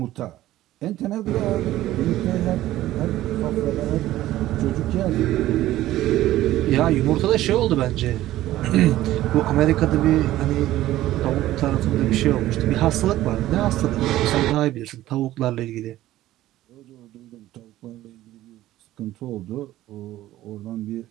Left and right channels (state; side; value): quieter; left; 14.9 dB